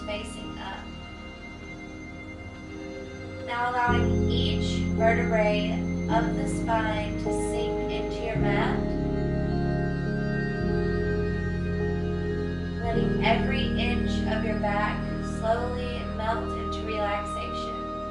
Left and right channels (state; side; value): identical; both; correlation 1.00